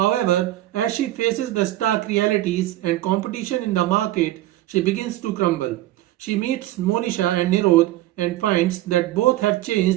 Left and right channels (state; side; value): quieter; left; 15.4 dB